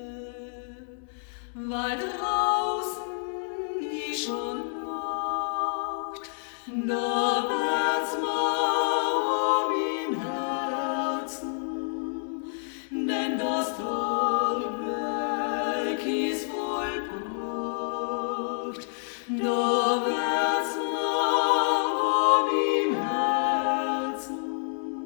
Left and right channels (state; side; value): silent; right; 59 dB below the other